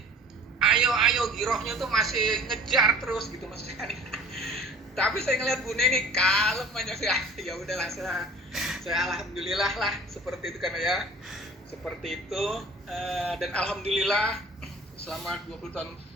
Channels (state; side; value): normal; both; correlation 0.46